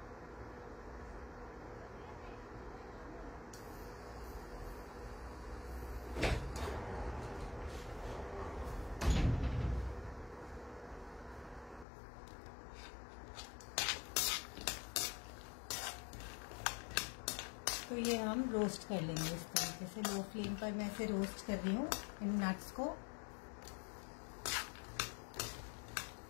तो ये हम रोस्ट कर लेंगे इस तरीके से, लो फ्लेम पर मैं इसे रोस्ट कर रही हूँ इन नट्स को।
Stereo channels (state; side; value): drops out; right; at 11.9 s